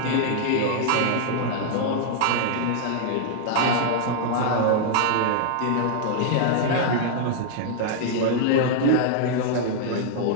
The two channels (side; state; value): both; different; correlation -0.01